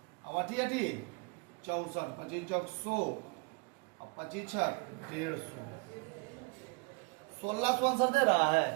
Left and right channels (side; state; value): left; quieter; 30.5 dB